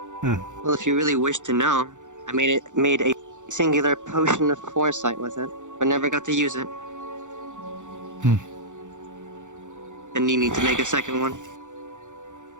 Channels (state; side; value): late; left; 0.85 ms